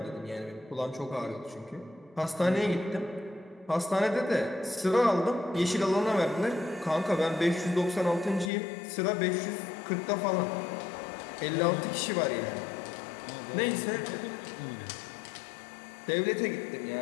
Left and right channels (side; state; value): right; drops out; at 8.5 s